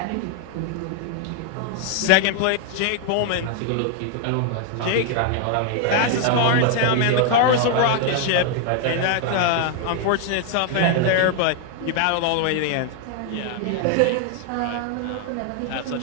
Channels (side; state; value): both; different; correlation 0.00